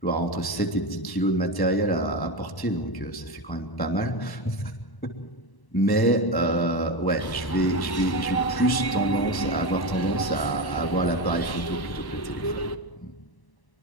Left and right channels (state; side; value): late; right; 1.0 ms